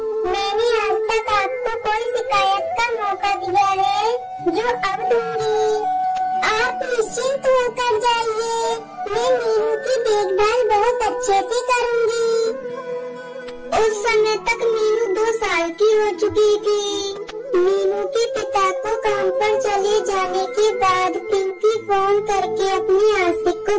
मैंने आज तक आपको कोई शिकायत का मौका दिया है जो अब दूंगी। आप निश्चिंत होकर जाइए, मैं मीनू की देखभाल बहुत अच्छे से करूंगी। उस समय तक मीनू 2 साल की हो चुकी थी। मीनू के पिता को काम पर चले जाने के बाद पिंकी फोन करके अपनी आशिक को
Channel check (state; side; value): identical; both; correlation 1.00